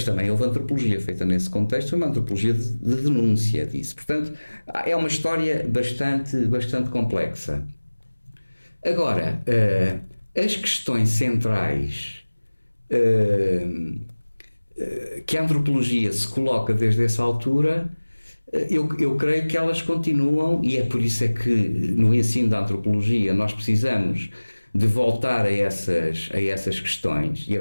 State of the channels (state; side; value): inverted; both; correlation -1.00